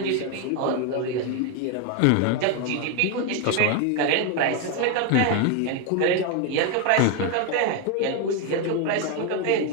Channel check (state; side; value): different; both; correlation 0.01